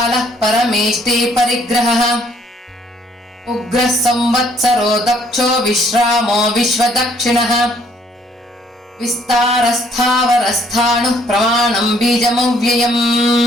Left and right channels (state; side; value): normal; both; correlation 0.64